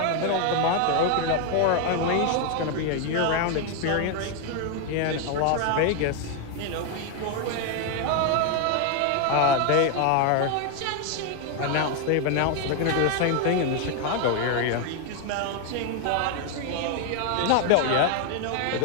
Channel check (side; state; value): both; different; correlation 0.01